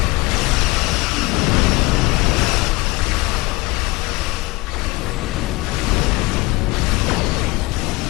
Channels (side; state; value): right; quieter; 23.2 dB